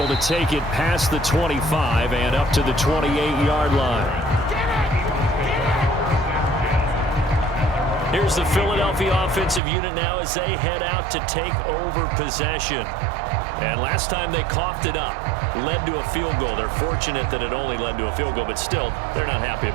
to take it past the 25 and up to the 28-yard line. Here's the Philadelphia offensive unit now as they head out to take over possession. And last time they coughed it up, led to a field goal. They're fortunate that it only led to a field goal, but still, they're not happy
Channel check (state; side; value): drops out; left; at 9.6 s